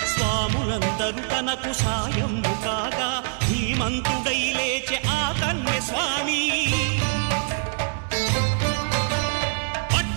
స్వాములందరూ తనకు సాయము కాగా ధీమంతుడై లేచే ఆ కన్య స్వామి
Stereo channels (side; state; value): left; silent; 62 dB below the other